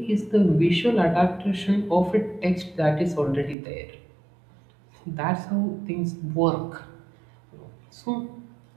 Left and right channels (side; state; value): left; drops out; at 3.6 s